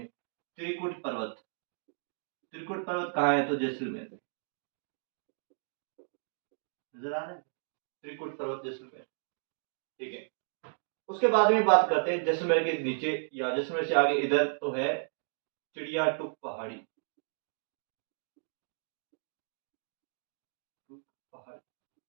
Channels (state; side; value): silent; left; digital silence